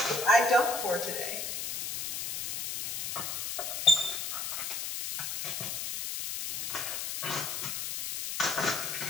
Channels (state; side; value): noise; left; hiss, 3 dB below the sound